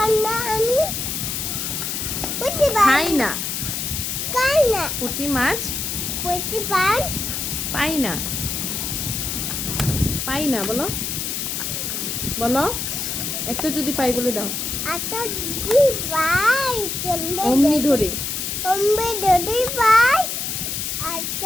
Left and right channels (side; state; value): left; noise; hiss, 3 dB below the sound